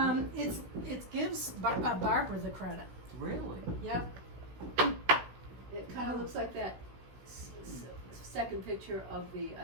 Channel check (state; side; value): late; left; 16 ms